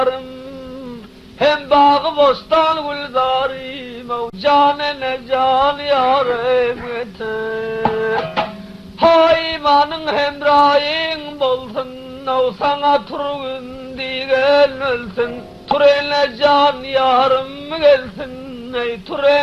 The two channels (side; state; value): both; identical; correlation 1.00